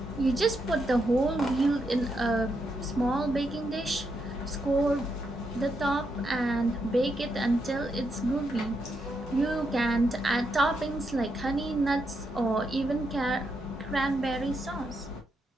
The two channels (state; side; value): normal; both; correlation 0.81